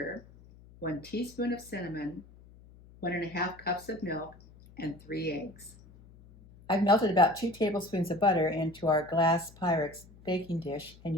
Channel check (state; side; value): noise; left; hum, 23 dB below the sound